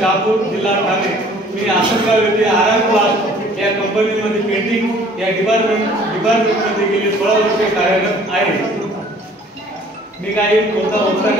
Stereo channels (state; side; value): normal; both; correlation 0.54